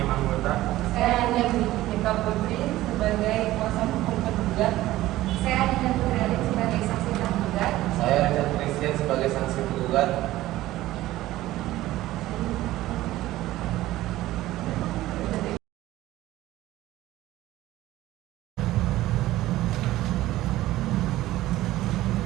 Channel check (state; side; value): quieter; left; 15.9 dB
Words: anggota. Saya Nika Putri sebagai kuasa hukum penggugat. Saya Adinda Putri sebagai saksi tergugat. Saya Richard Christian sebagai saksi penggugat.